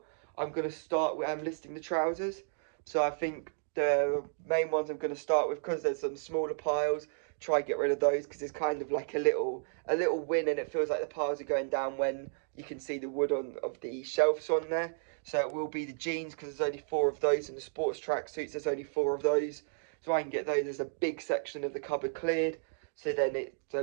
I'm going to start with listing the trousers. So I think the main ones I'm going to start with, because there's some smaller piles, try and get rid of those, because it's kind of like a little win, and it feels like the piles are going down when you can see the wood of the shelves on there. So it will be the jeans, because there's only 4 of those, and the sports tracksuits, there's only 4 of those. So I can get those as a big section of the cupboard cleared. So then it's a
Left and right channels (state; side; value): silent; left; digital silence